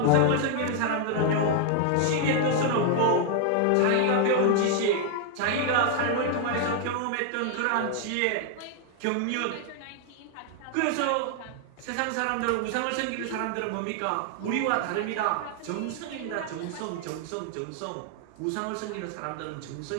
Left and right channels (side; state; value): both; different; correlation 0.00